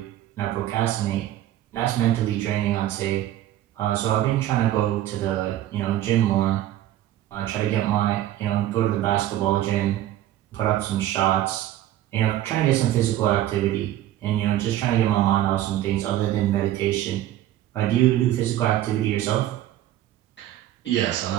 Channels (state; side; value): quieter; left; 13.3 dB